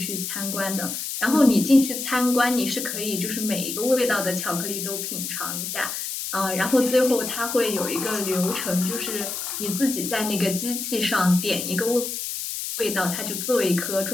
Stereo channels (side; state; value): left; noise; hiss, 5 dB below the sound